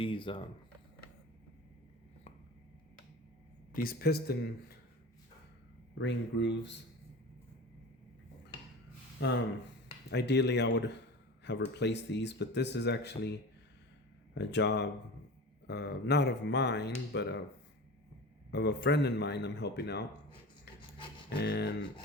piston ring grooves. Um, Ideally, I would have replaced these, but this is actually a job, not of mine, but of a friend of mine I'm helping out, and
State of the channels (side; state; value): both; normal; correlation 0.32